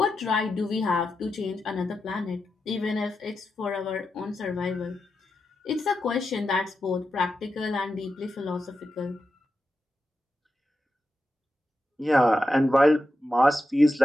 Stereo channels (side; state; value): both; normal; correlation 0.88